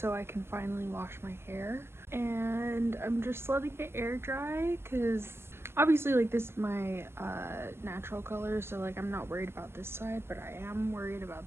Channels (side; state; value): left; late; 0.12 ms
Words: I can finally wash my hair, and I'm just letting it air dry because obviously like this is my natural color, so like I'm not worried about this side, but I am worried about